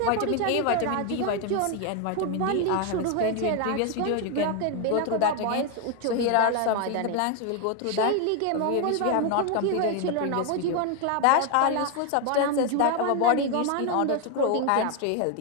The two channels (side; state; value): both; different; correlation 0.01